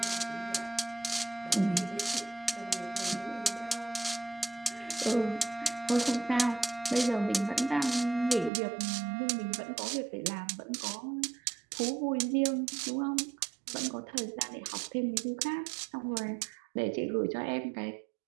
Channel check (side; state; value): left; drops out; at 8.5 s